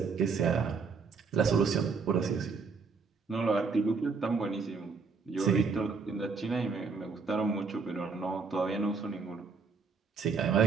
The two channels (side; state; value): left; quieter; 5.0 dB